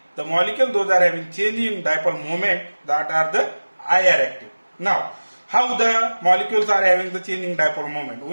The molecule, those are having change in dipole moment, that are the IR active. Now, how the molecules are having the change in dipole moment?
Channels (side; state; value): both; inverted; correlation -1.00